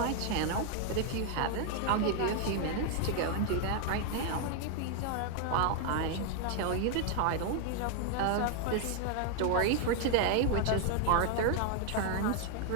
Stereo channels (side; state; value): both; different; correlation 0.00